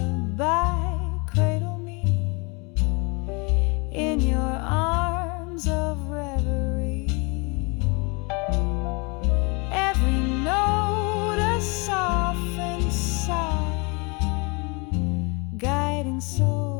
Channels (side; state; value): right; quieter; 30.4 dB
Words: cradle me in your arms of reverie. Every